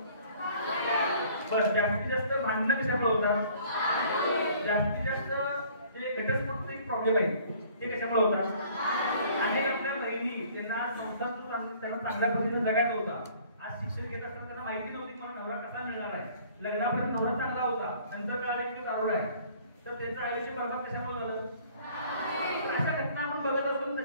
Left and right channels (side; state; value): both; inverted; correlation -0.55